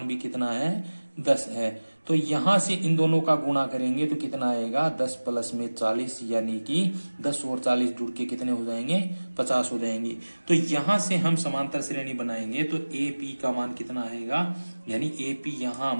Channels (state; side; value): inverted; both; correlation -1.00